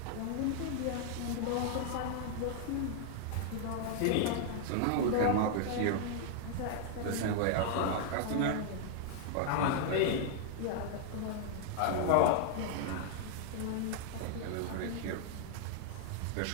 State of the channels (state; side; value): different; both; correlation -0.01